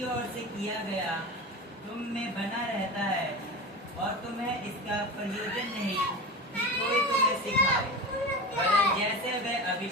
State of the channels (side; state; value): both; normal; correlation 0.27